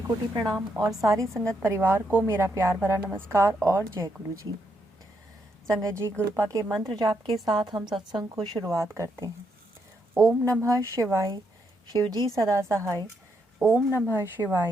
प्रणाम और सारी संगत परिवार को मेरा प्यार भरा नमस्कार और जय गुरु जी। संगत जी, गुरुपा के मंत्र जाप के साथ हम सत्संग को शुरुआत करते हैं। ओम नमः शिवाय, शिव जी सदा सहाय। ओम नमः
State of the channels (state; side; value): normal; both; correlation 0.78